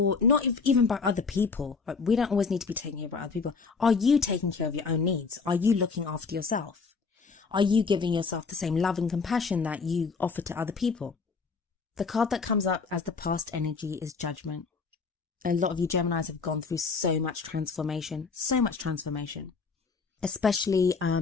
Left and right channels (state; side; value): quieter; right; 4.9 dB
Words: not even by other people. Like, we don't always need to be taken care of by other people. Are you taking care of your own needs? Are you looking after yourself? Are you giving yourself the same love and compassion that you offer to other people? The card that comes up as the past energy is Judgment. A lot of you Geminis have gone through so much transformation, especially